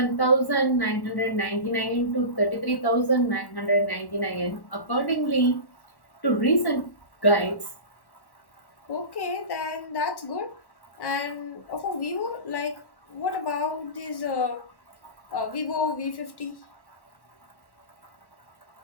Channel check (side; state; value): right; late; 1.1 ms